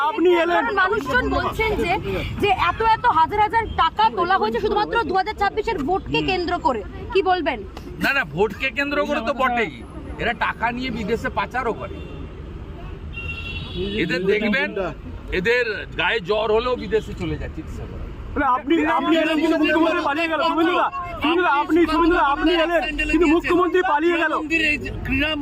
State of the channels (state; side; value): identical; both; correlation 1.00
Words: আপনি এলেন, মানুষজন বলছেন যে এত হাজার হাজার টাকা তোলা হয়েছে শুধুমাত্র 2026-এর ভোটকে কেন্দ্র করে, কি বলবেন? না, ভোটকে কেন্দ্র করে তো বটেই, এরা টাকা নিয়ে বিদেশে পাচারও করে। এদের দেখবেন, এদের গায়ে জ্বর হলেও বিদেশে চলে যায় চিকিৎসা করা। আপনি এলেন কিন্তু মুখ্যমন্ত্রী পালিয়ে গেল। আপনি এলেন কিন্তু মুখ্যমন্ত্রী পালিয়ে গেল।